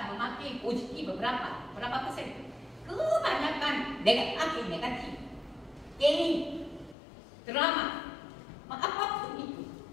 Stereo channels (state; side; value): drops out; right; at 7.0 s